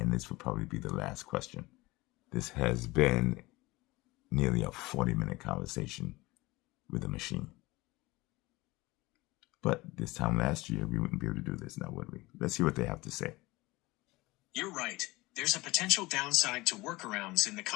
this will probably be the last question. This has been nearly a 40-minute conversation with a machine. But this time last year, we wouldn't be able to do this now, would we? Let's see what they have to say. You're right. There's a potential downside to workarounds in the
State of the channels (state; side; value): quieter; right; 21.2 dB